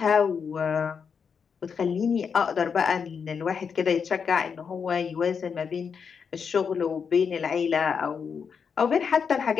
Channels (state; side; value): quieter; right; 6.3 dB